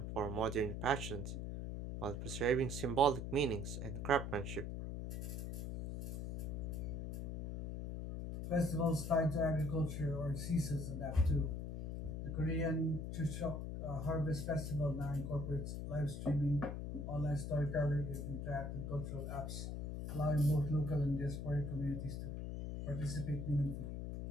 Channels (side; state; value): left; noise; hum, 4 dB below the sound